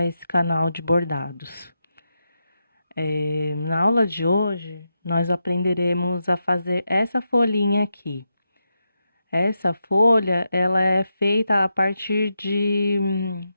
esse canal de bordados. Na aula de hoje, nós aprenderemos a fazer essa folhinha aqui. Essa folha, ela é feita a partir de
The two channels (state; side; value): inverted; both; correlation -0.86